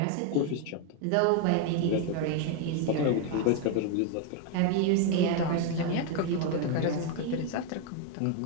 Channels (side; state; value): both; different; correlation 0.01